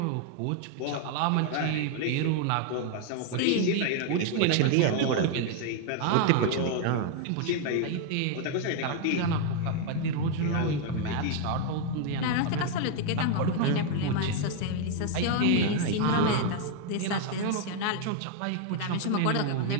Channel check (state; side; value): different; both; correlation 0.00